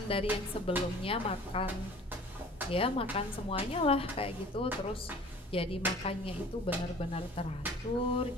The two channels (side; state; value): both; normal; correlation 0.47